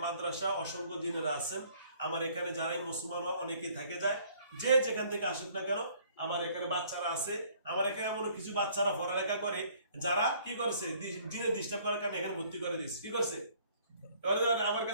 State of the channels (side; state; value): both; inverted; correlation -0.59